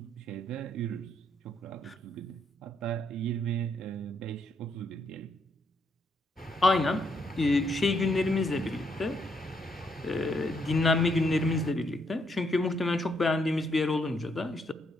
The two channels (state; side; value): normal; both; correlation 0.74